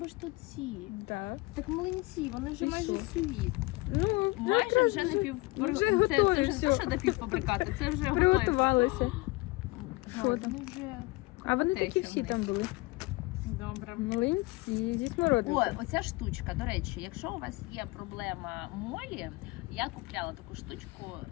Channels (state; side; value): quieter; right; 23.1 dB